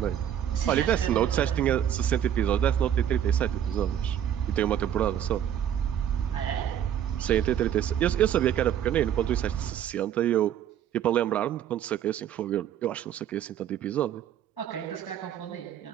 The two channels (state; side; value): quieter; left; 10.1 dB